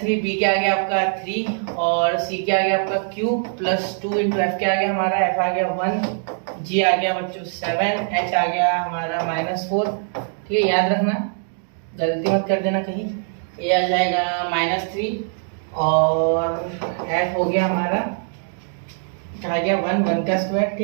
b क्या आ गया आपका 3 और c क्या आ गया आपका q प्लस 2 इंटू f क्या आ गया हमारा, f आ गया 1, g आ गया बच्चों 7, h आ गया हमारा -4, ठीक है। याद रखना, गलती मत कर देना कहीं। a आ जाएगा -3 और f हो गया हमारा क्या आ गया 1 का स्क्वायर,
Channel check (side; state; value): left; silent; digital silence